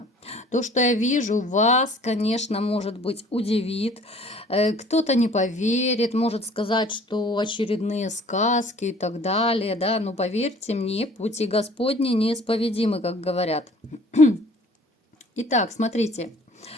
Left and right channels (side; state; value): both; normal; correlation 0.52